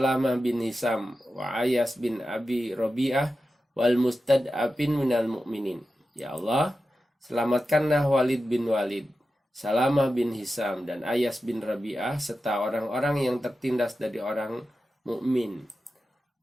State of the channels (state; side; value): normal; both; correlation 0.92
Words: bin Hisam, wa Ayas bin Abi Robi'ah, wal mustad'afin minal mu'minin. Ya Allah, selamatkanlah Walid bin Walid, Salamah bin Hisam, dan Ayas bin Rabi'ah, serta orang-orang yang tertindas dari orang mukmin.